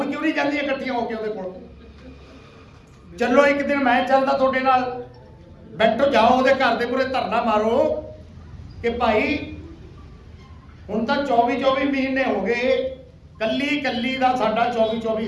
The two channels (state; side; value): identical; both; correlation 1.00